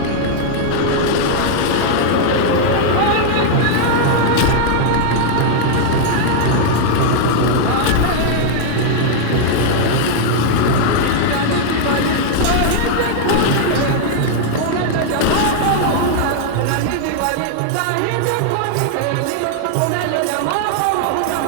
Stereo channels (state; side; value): different; both; correlation -0.01